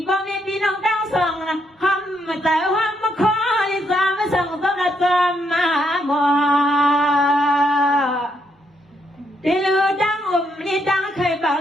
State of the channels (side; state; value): both; normal; correlation 0.76